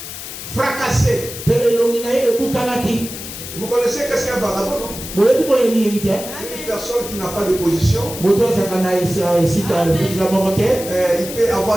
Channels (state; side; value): noise; left; hiss, 10 dB below the sound